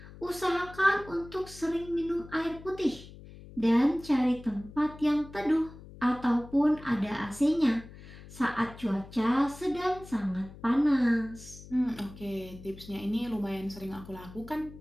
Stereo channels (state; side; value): noise; left; hum, 17 dB below the sound